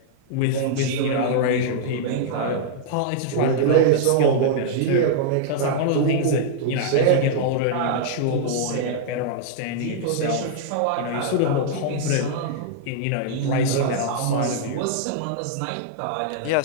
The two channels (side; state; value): both; different; correlation -0.02